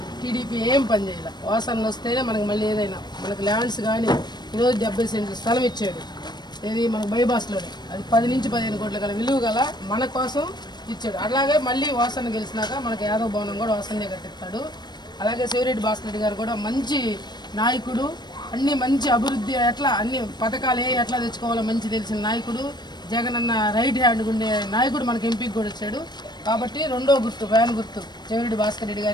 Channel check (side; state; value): right; late; 0.21 ms